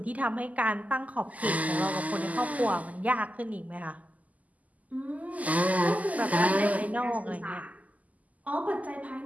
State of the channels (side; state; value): left; late; 0.076 ms